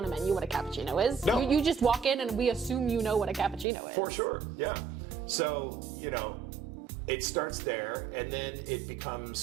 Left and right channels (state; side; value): drops out; left; at 3.7 s